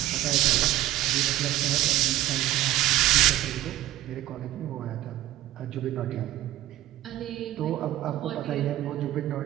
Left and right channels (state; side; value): quieter; left; 14.6 dB